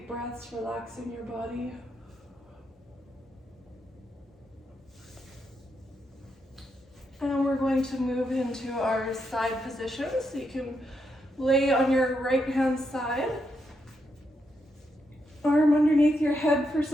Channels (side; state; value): both; normal; correlation 0.81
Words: breaths, relaxing your body. And we're going to move into our side position. So you can lay on your right hand side. Arm underneath your head for